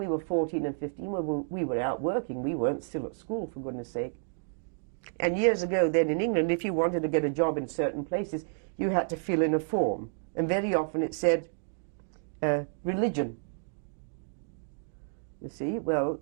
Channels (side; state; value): left; silent; digital silence